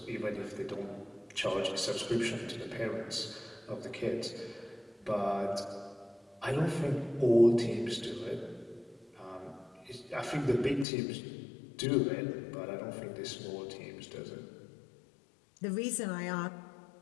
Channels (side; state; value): right; drops out; at 10.9 s